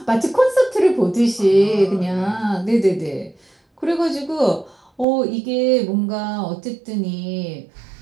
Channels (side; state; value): left; drops out; at 5.1 s